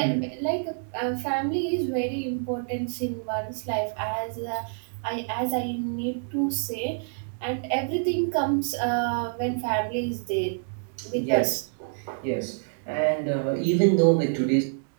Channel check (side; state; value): left; silent; digital silence